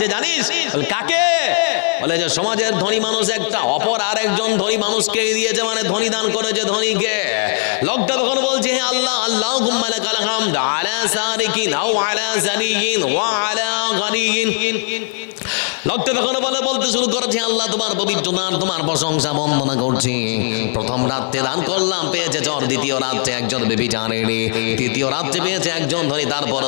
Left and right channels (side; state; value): right; silent; digital silence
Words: জানিস? বলে কাকে? বলে যে সমাজের ধনী মানুষ একটা, অপর আর একজন ধনী মানুষকে দিয়েছে, মানে ধনী দান করেছে ধনীকে। লোকটা তখন বলছে হে আল্লাহ, আল্লাহুম্মা লাকাল হামদ আলা সারিকিন আও আলা জানিয়িন ওয়া আলা গানিয়িন। লোকটা তখন বলতে শুরু করেছে আল্লাহ তোমার পবিত্র নাম, তোমার প্রশংসা বন্দনা করছি। প্রথম রাত্রে দান করলাম, পেয়েছে চোর, দ্বিতীয় রাত্রে একজন বেবিচারেরী, তৃতীয় রাত্রে পেয়েছে একজন ধনী,